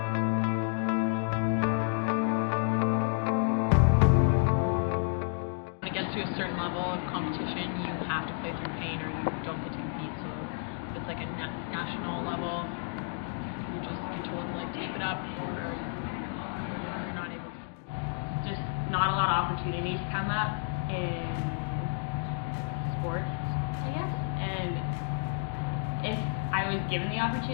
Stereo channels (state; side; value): silent; right; 57 dB below the other